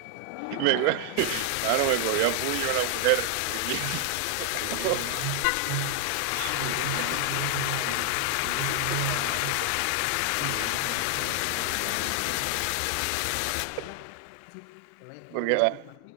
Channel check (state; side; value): different; both; correlation 0.00